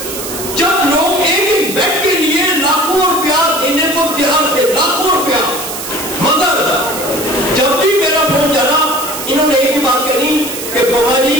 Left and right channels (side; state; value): right; noise; hiss, 7 dB below the sound